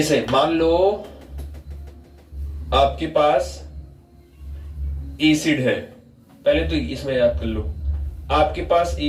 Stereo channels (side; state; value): both; identical; correlation 1.00